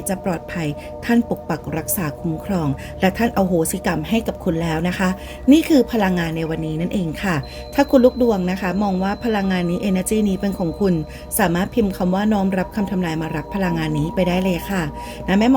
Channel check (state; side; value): identical; both; correlation 1.00